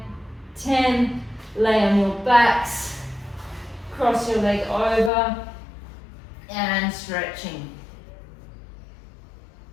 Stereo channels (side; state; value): right; drops out; at 5.1 s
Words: 10. Lay on your backs. Cross your leg over and stretching.